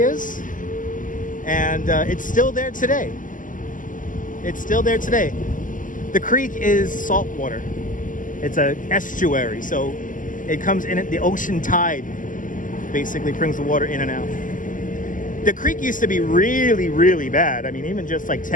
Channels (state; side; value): late; right; 0.38 ms